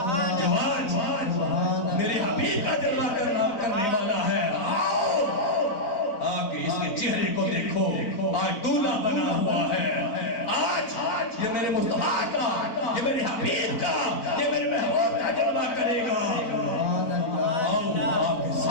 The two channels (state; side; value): late; right; 4.0 ms